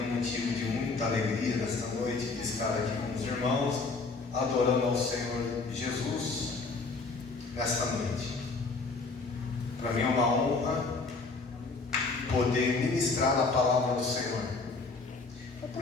um motivo de muita alegria nesta noite de estar aqui com os irmãos, adorando ao Senhor Jesus nesta noite. Para mim é uma honra poder ministrar a palavra do Senhor,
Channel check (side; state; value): right; quieter; 4.0 dB